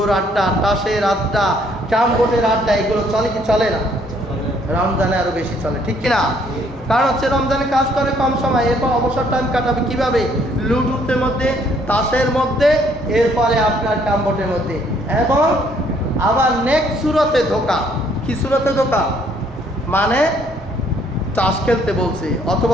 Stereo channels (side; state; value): both; normal; correlation 0.65